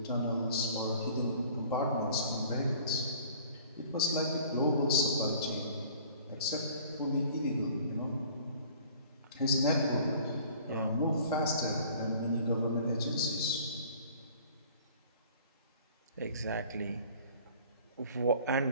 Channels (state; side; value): inverted; both; correlation -0.50